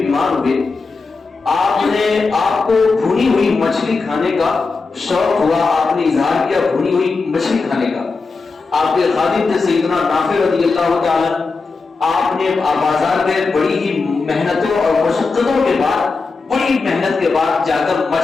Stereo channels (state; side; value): quieter; right; 4.2 dB